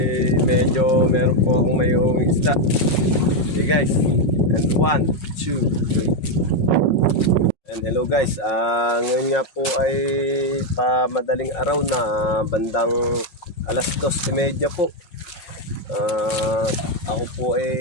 medyo meron po akong mayroong isda. Okay guys, and 1, 2, 3. And hello guys, ngayon nga po ay madaling araw na, bandang alas 2:30 po. Ako po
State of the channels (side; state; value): right; late; 5.4 ms